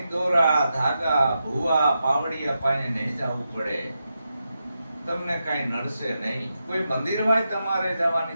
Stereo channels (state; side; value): inverted; both; correlation -0.88